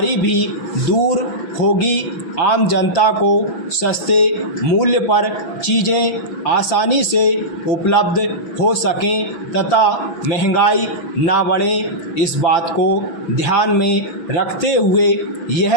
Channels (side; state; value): right; late; 6.0 ms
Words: भी दूर होगी। आम जनता को सस्ते मूल्य पर चीज़ें आसानी से उपलब्ध हो सकें तथा महंगाई ना बढ़े, इस बात को ध्यान में रखते हुए